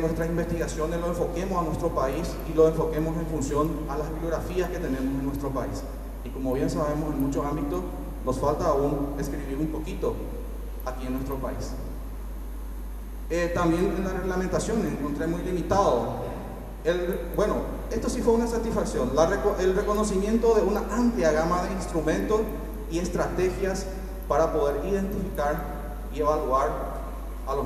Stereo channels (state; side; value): identical; both; correlation 1.00